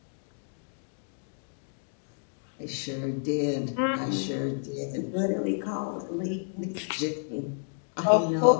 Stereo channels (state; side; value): silent; right; digital silence